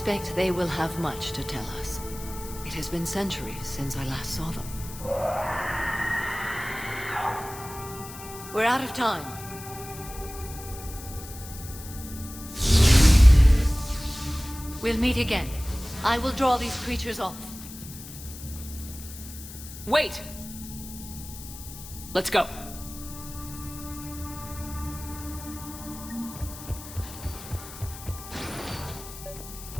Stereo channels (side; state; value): left; noise; hiss, 14 dB below the sound